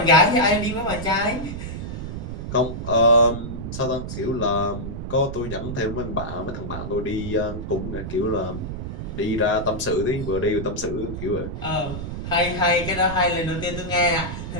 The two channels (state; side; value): noise; right; rumble, 6 dB below the sound